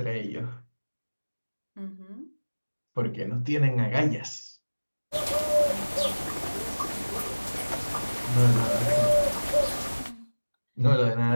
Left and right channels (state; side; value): inverted; both; correlation -1.00